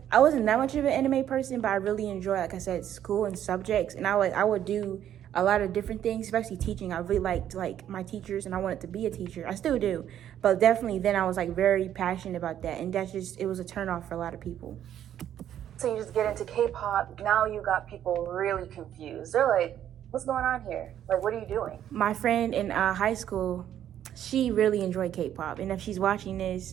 I wasn't that much of an anime person, but I really enjoy, like I said, school and subjects. And I would do a lot of different things, especially teaching. I really liked like my teachers, and I wanted to be a teacher. I still do, but definitely then I was like very passionate about that, and it was a turnoff for a lot of people. So you just get into K-pop. Now you got people really confused. They're like, what's going on here? Like, what are you doing? My friend in high school, she really enjoyed K-pop, and if she's watching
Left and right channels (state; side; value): quieter; left; 10.7 dB